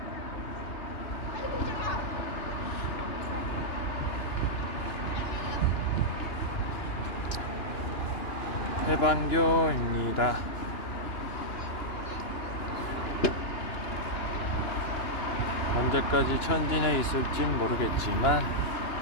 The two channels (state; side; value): late; right; 2.9 ms